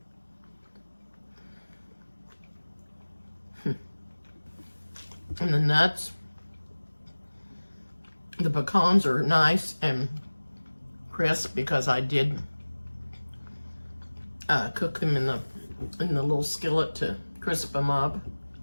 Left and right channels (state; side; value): inverted; both; correlation -1.00